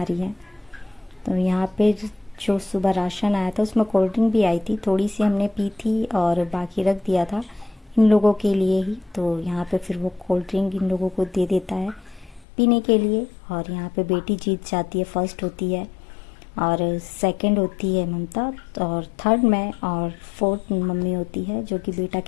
रही है। तो यहाँ पे जो सुबह राशन आया था उसमें कोल्ड ड्रिंक भी आई थी, थोड़ी सी हमने पी थी और बाकी रख दिया था इन लोगों के लिए ही। तो यहाँ पे फिर वो कोल्ड ड्रिंक इन लोगों को दे देता है पीने के लिए। और यहाँ पे बेटी जीत जाती है, फर्स्ट होती है और सेकंड होती है ममता, और थर्ड मैं, और फोर्थ मम्मी होती है, जो कि बेटा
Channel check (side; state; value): right; drops out; at 12.5 s